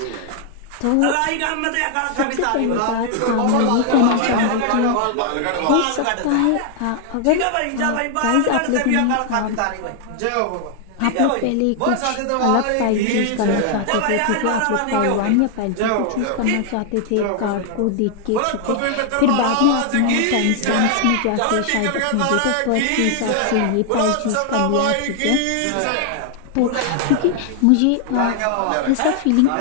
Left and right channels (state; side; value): different; both; correlation 0.00